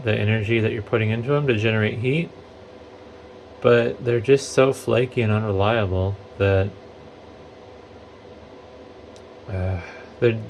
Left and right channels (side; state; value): both; identical; correlation 1.00